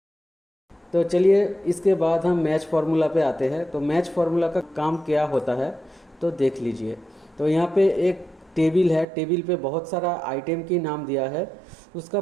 तो चलिए इसके बाद हम मैच फार्मूला पे आते हैं। तो मैच फार्मूला का काम क्या होता है तो देख लीजिए। तो यहाँ पे एक टेबल है, टेबल पे बहुत सारा आइटम की नाम दिया है, उसका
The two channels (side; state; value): left; drops out; at 9.1 s